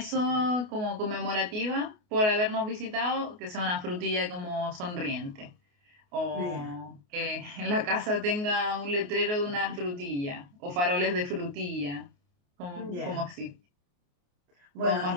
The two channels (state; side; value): late; left; 28 ms